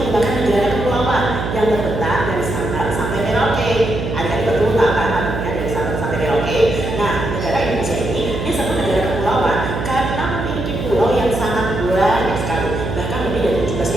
negara kepulauan yang terbentang dari Sabang sampai Merauke. Adik-adik betul tak kan artinya dari Sabang sampai Merauke? Nah, negara Indonesia ini disebut negara kepulauan karena memiliki pulau yang sangat banyak sekali, bahkan lebih dari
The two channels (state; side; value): noise; right; hum, 4 dB below the sound